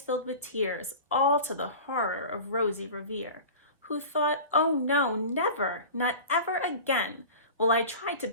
filled with tears, all to the horror of Rosie Revere, who thought, "Oh no, never, not ever again will I try to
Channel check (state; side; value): inverted; both; correlation -0.35